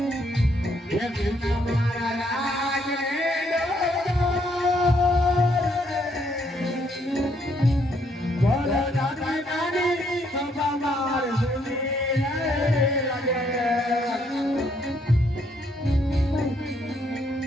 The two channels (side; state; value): both; normal; correlation 0.71